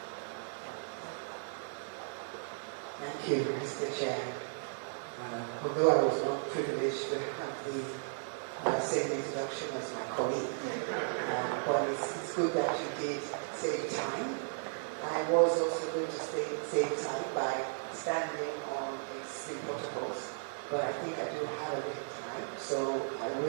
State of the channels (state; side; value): silent; left; digital silence